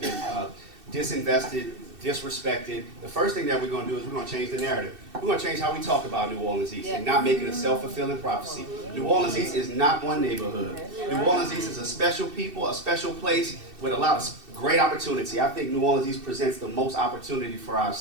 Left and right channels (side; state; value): left; late; 2.6 ms